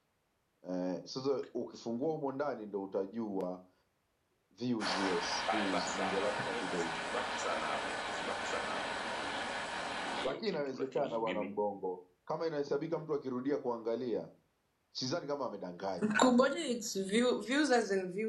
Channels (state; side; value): identical; both; correlation 1.00